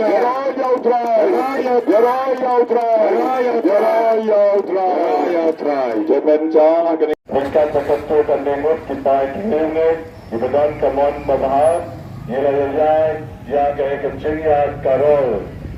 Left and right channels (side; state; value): both; identical; correlation 1.00